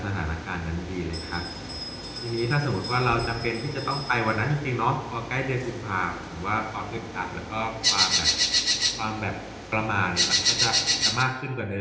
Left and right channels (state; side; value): identical; both; correlation 1.00